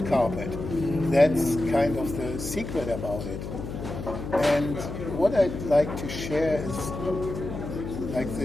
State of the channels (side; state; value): left; noise; hum, 7 dB below the sound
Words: carpet. That's kind of the secret about it. And what I'd like to share is, like